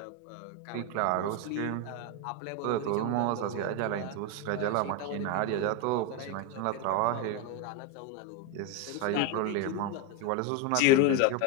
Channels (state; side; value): different; both; correlation 0.02